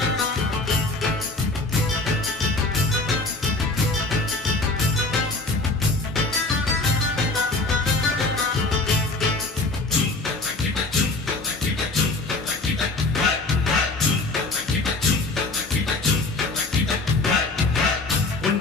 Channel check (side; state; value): right; quieter; 3.2 dB